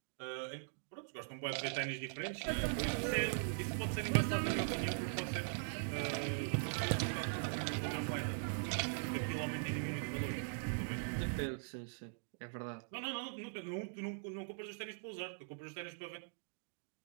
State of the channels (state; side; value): silent; left; digital silence